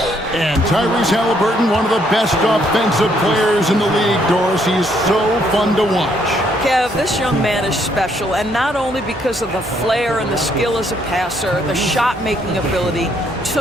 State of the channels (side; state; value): both; normal; correlation 0.70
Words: And Tyrese Halliburton, one of the best offensive players in the league, Doris. He's so fun to watch. Kev, this young man is special, and not only because of the flair and the skill as a passer, the shot-making ability.